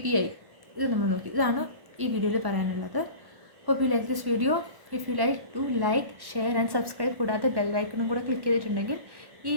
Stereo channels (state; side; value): late; left; 1.1 ms